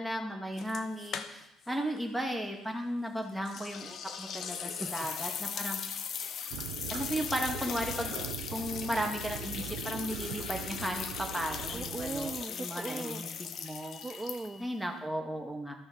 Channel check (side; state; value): both; normal; correlation 0.77